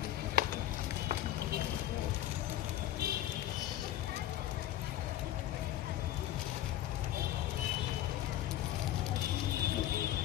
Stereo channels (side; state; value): right; quieter; 13.1 dB